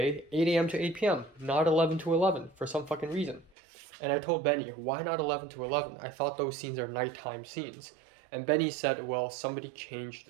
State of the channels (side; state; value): left; drops out; at 3.5 s